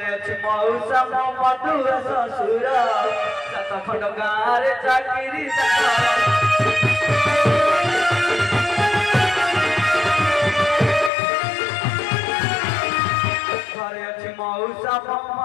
मौसा मो मधुर ससुर सात खंड गाँव चाकरी घरे अच्छी मौसा मो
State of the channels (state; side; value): drops out; right; at 11.1 s